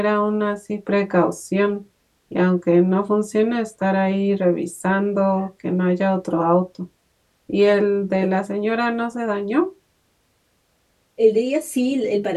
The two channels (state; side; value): identical; both; correlation 1.00